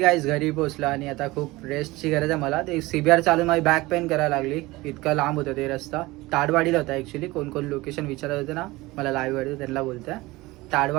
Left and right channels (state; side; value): quieter; left; 20.5 dB